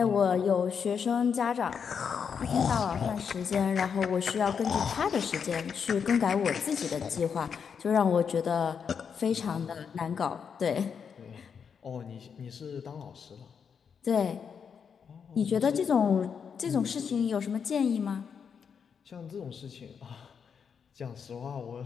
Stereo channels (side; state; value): right; quieter; 6.7 dB